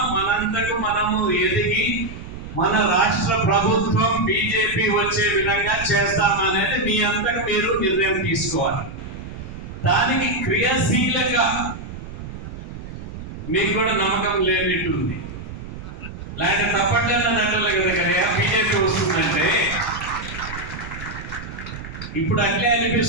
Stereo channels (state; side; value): noise; right; rumble, 11 dB below the sound